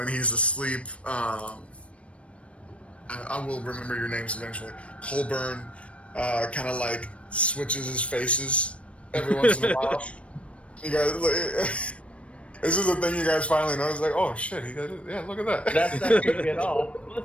he's asleep, I will remember your names eventually. Colburn kind of like switches his faces every once in a while. You guys, this is the thing you guys finally notice. Like, oh shit, he did it. Yeah, look at that. That's not creepy at all.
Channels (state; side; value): late; right; 0.062 ms